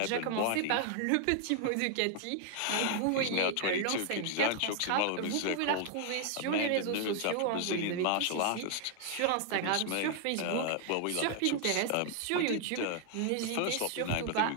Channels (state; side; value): different; both; correlation 0.00